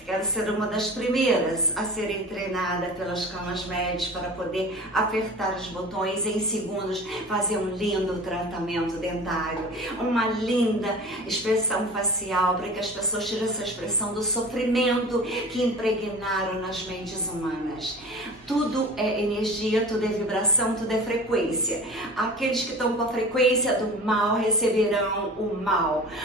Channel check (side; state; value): both; normal; correlation 0.37